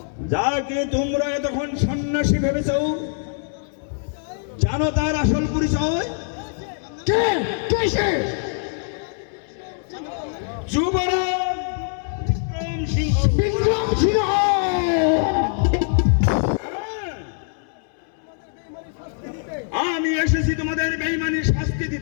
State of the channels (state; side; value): silent; right; 63 dB below the other